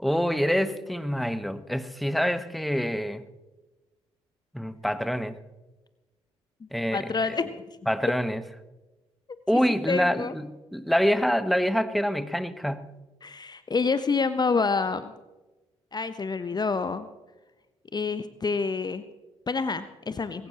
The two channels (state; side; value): normal; both; correlation 0.84